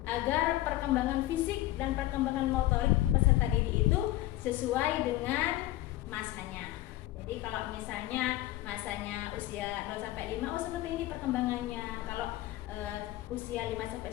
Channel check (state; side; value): quieter; right; 15.8 dB